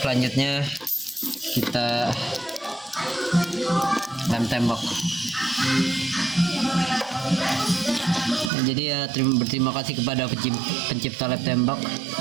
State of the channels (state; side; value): drops out; left; at 8.5 s